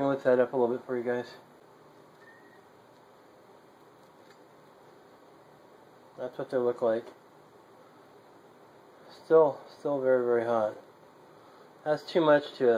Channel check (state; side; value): identical; both; correlation 1.00